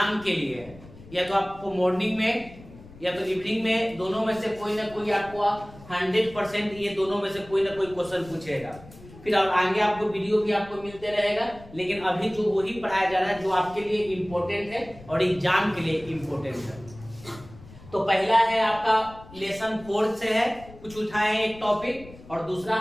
के लिए है, या तो आपको मॉर्निंग में या तो इवनिंग में, दोनों में से कोई ना कोई आपको 100% ये दोनों में से कोई ना कोई क्वेश्चन पूछेगा। फिर और आगे आपको वीडियो भी आपको मिलते रहेगा, लेकिन अभी जो वही पढ़ाया जा रहा है जो आपके लिए इम्पोर्टेंट है और एग्जाम के लिए इम्पोर्टेंट है। तो पहला है आपका लेसन 4 से है, कुछ उठाए हैं एक टॉपिक, और दूसरा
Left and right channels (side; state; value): left; noise; rumble, 19 dB below the sound